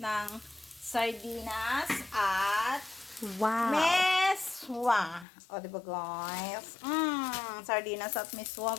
sardinas at Wow. meswa. O, diba guys? Sardinas at meswa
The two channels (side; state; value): right; drops out; at 5.2 s